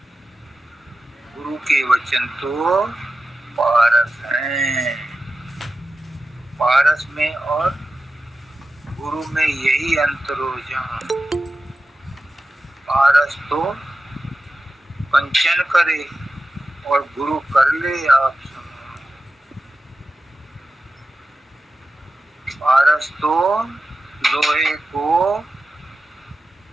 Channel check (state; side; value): normal; both; correlation 0.92